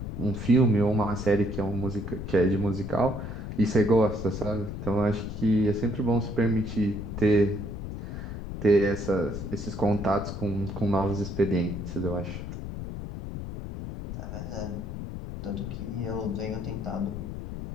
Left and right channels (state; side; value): noise; left; rumble, 7 dB below the sound